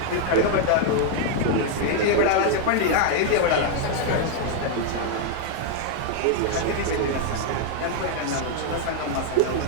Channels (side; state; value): both; different; correlation 0.00